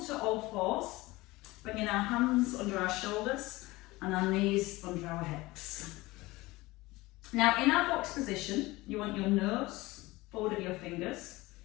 all fours, bringing our hands under our shoulders and our knees under our hips. Now in our box position, you want your nose forward of your fingers.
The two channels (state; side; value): quieter; right; 20.5 dB